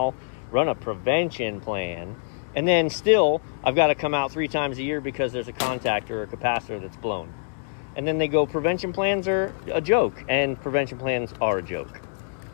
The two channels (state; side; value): silent; right; digital silence